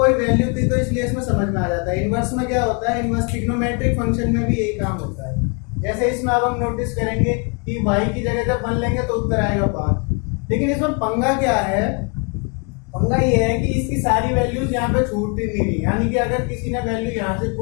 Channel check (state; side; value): quieter; right; 34.9 dB